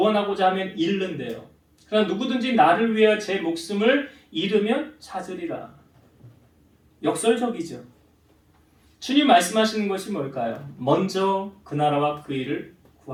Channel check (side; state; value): both; identical; correlation 1.00